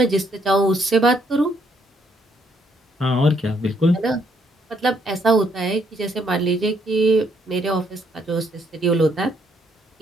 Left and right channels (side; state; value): both; normal; correlation 0.71